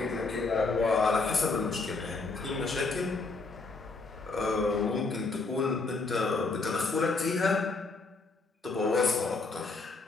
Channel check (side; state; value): right; quieter; 3.8 dB